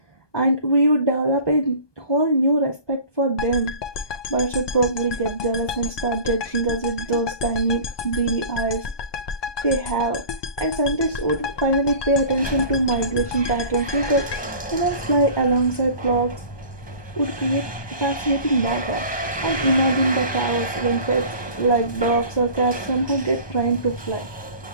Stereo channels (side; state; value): right; late; 1.2 ms